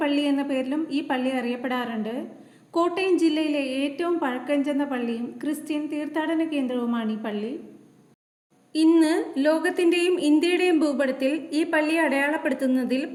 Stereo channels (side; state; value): both; identical; correlation 1.00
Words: പള്ളി എന്ന പേരിലും ഈ പള്ളി അറിയപ്പെടാറുണ്ട്. കോട്ടയം ജില്ലയിലെ ഏറ്റവും പഴക്കം ചെന്ന പള്ളിയും ക്രിസ്ത്യൻ തീർത്ഥാടന കേന്ദ്രവുമാണ് ഈ പള്ളി. ഇന്ന് ലോകത്തിൻ്റെയും ഇന്ത്യയുടെയും ഭൂപടത്തിൽ ഈ പള്ളിയെ അടയാളപ്പെടുത്തുന്നതിൽ